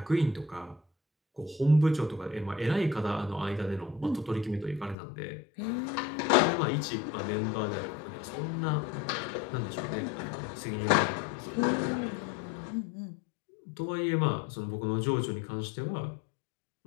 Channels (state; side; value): drops out; right; at 5.0 s